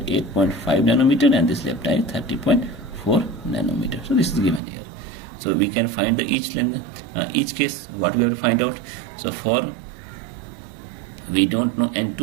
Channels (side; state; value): left; drops out; at 4.6 s